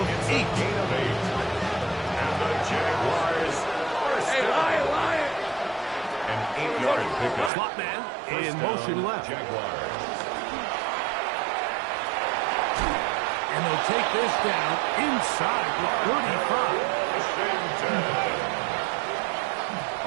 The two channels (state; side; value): drops out; left; at 7.5 s